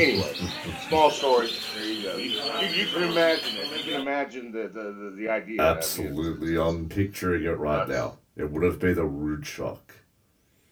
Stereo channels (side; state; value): both; identical; correlation 1.00